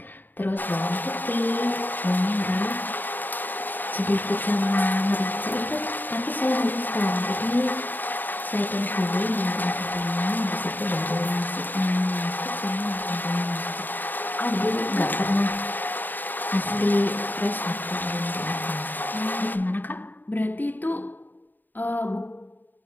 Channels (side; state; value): right; late; 0.089 ms